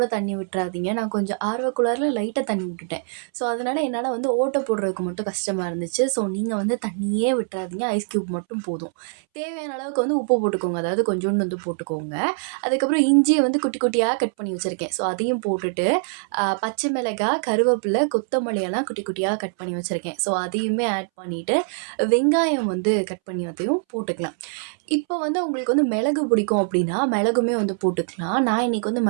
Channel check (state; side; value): silent; left; 63 dB below the other